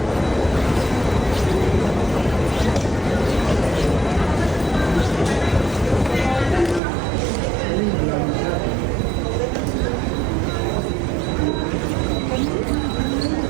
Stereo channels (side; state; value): left; drops out; at 6.8 s